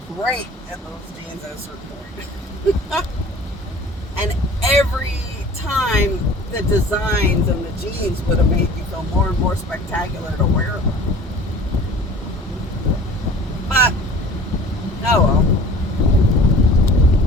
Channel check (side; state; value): both; normal; correlation 0.45